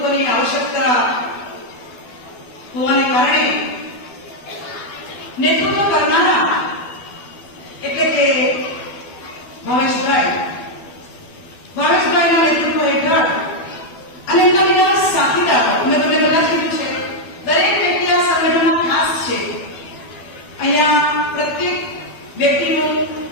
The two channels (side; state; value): right; late; 12 ms